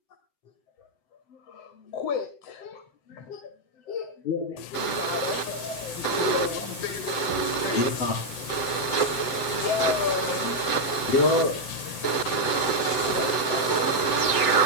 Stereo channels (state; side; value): late; right; 7.8 ms